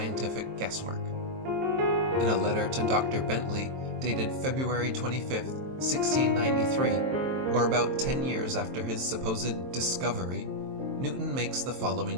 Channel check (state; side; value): late; left; 23 ms